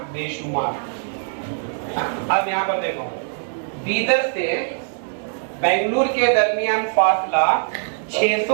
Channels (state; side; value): silent; left; digital silence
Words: बेशुमार। अब यहाँ पर देखो, बीदर से बेंगलुरु के दरमियान फासला